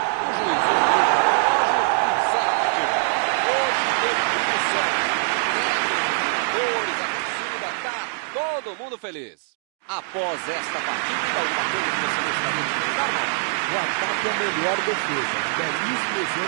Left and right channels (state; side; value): silent; left; digital silence